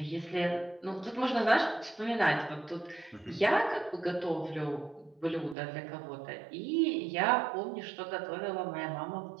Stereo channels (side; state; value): left; drops out; at 5.6 s